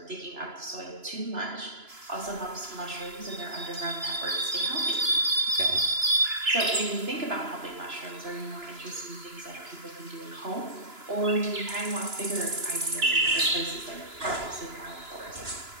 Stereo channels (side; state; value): left; late; 2.9 ms